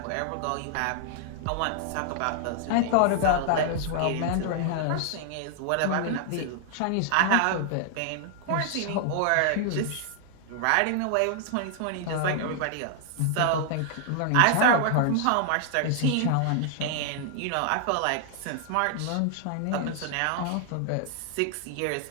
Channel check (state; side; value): different; both; correlation -0.01